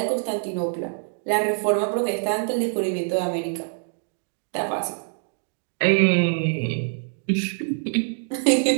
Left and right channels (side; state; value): left; silent; digital silence